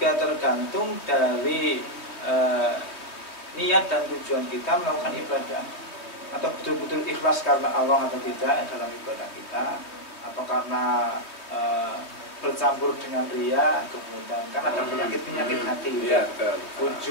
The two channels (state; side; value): late; right; 3.2 ms